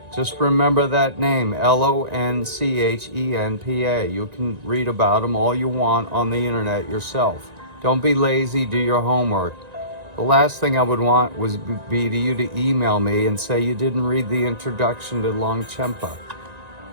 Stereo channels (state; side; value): late; left; 1.9 ms